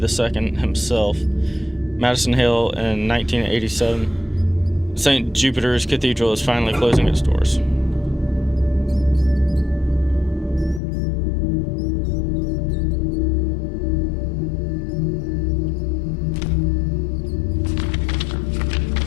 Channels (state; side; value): drops out; right; at 10.8 s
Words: II himself. Madison Hill in 1987. St. Jupiter's Cathedral is finally closing its doors.